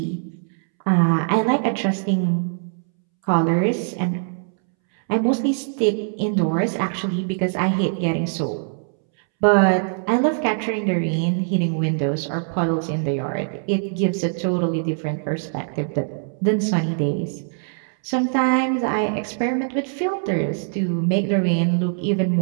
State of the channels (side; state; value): left; silent; 64 dB below the other